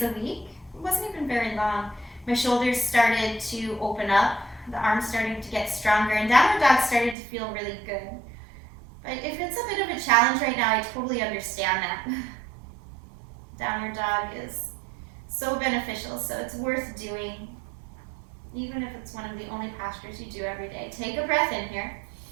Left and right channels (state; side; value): drops out; left; at 7.2 s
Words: a week, it wasn't even very long, my shoulders started to open up, the arms starting to get stronger, and downward dog started to feel really good. But if it's a bit of a challenge right now, I totally understand that. Downward dog is so beneficial, so it's worth doing, even if it's one of the only postures you do every day. Take a breath in here.